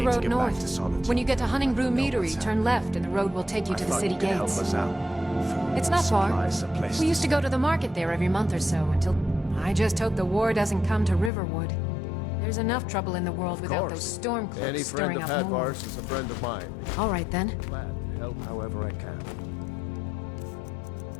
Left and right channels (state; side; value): drops out; right; at 11.3 s